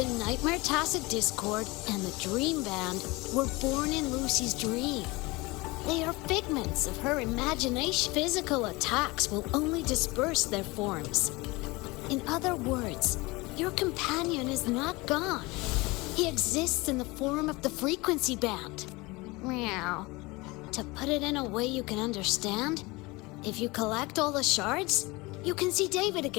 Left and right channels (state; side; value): quieter; right; 23.5 dB